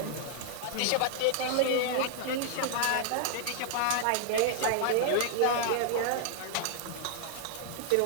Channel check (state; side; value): different; both; correlation -0.01